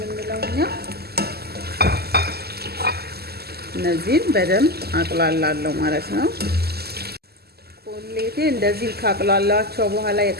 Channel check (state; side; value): late; left; 0.46 ms